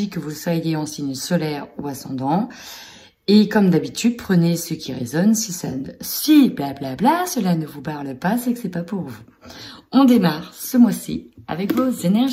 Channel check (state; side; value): identical; both; correlation 1.00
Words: que vous soyez en signe solaire ou ascendant. Et comme d'habitude, prenez ce qui résonne. Si blablabla, cela ne vous parle pas, c'est que c'est pas pour vous. On démarre ce mois-ci avec vos